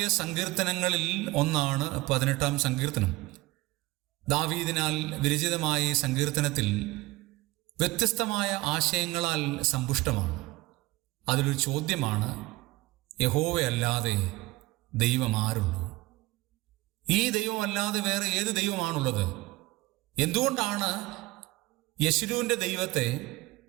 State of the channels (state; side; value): quieter; left; 20.6 dB